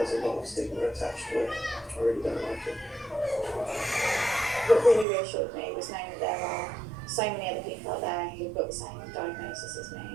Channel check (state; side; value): drops out; left; at 5.1 s